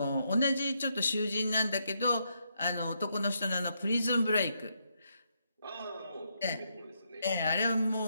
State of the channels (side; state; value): both; inverted; correlation -0.79